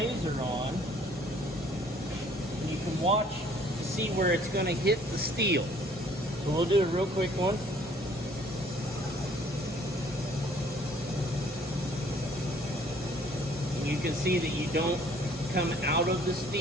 on, and you can watch to see where it's going to hit the steel. So we'll do a real quick one. And you can see that you don't come out of the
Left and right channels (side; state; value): both; normal; correlation 0.58